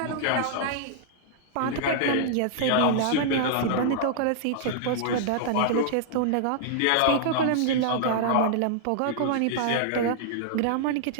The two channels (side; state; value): both; different; correlation -0.01